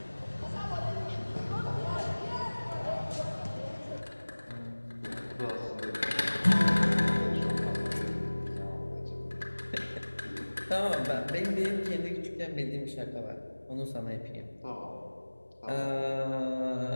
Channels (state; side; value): inverted; both; correlation -1.00